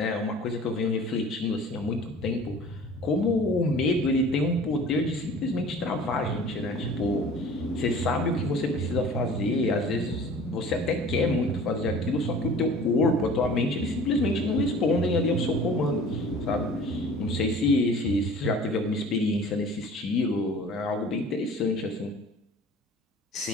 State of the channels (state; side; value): normal; both; correlation 0.45